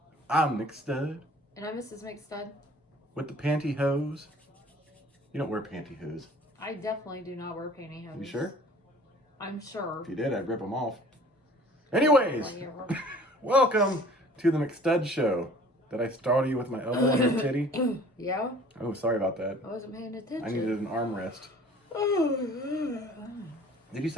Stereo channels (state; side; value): normal; both; correlation 0.50